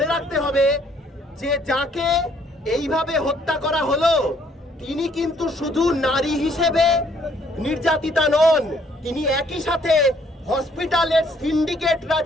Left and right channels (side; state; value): both; normal; correlation 0.65